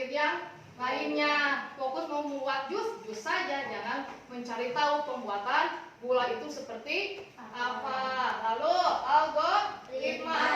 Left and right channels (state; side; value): identical; both; correlation 1.00